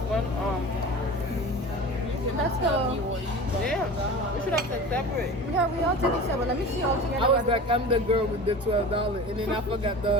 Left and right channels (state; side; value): normal; both; correlation 0.35